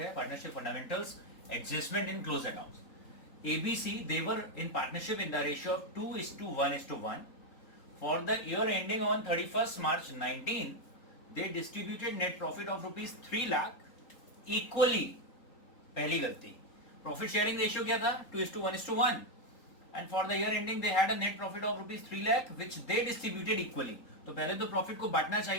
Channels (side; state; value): right; late; 3.8 ms